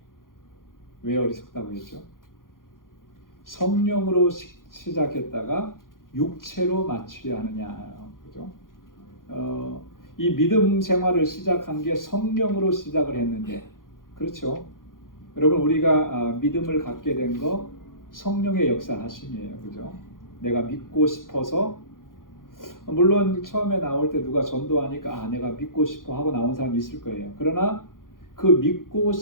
왜 어리석다고 했죠? 성령으로 시작했다가 육체로 마치려 하느냐, 그죠? 이 믿음 생활을 시작한 게 성령으로 시작을 했는데, 그렇죠? 여러분 우리가 믿음을 갖게 된 거 성령의 역사하심이에요, 그죠? 내가 믿고 싶어서, 물론 처음에 나올 때 누가 전도하니까 내가 믿고 싶어 하고 나온 사람이 있을 거예요. 그러나 그 믿고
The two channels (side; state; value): right; late; 0.90 ms